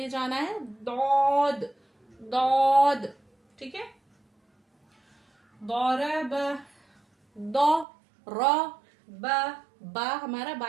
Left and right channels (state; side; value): drops out; left; at 7.9 s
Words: जाना है। दौद, दौद। ठीक है, दौरब, दो, र, बा हमारा